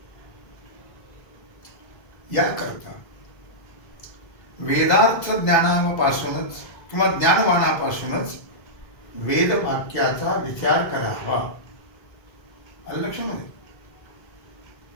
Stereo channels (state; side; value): late; right; 2.0 ms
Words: याकरता वेदार्थ ज्ञानापासूनच किंवा ज्ञानवानापासूनच वेदवाक्याचा विचार करावा. आलं लक्षामध्ये?